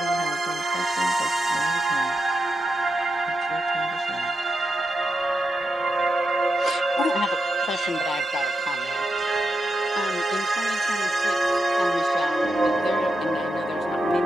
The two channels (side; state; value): both; normal; correlation 0.86